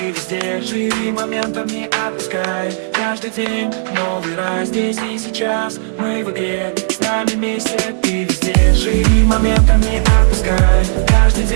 везде. Живи моментом, не отпускай. Каждый день новый рай. Здесь и сейчас мы в игре. С нами вместе, ты везде. Живи моментом, не отпускай. Каждый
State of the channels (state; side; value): silent; left; 70 dB below the other